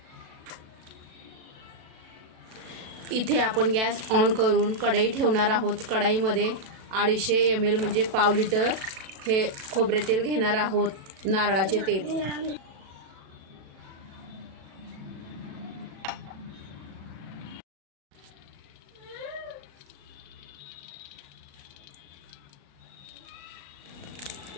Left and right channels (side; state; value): left; late; 37 ms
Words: इथे आपण गॅस ऑन करून कढई ठेवणार आहोत. कढईमध्ये 250 ml म्हणजे पाव लिटर हे खोबरे तेल घेणार आहोत, नारळाचे तेल.